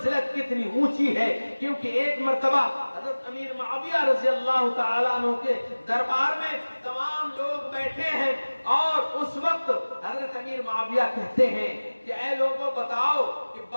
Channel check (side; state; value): both; inverted; correlation -1.00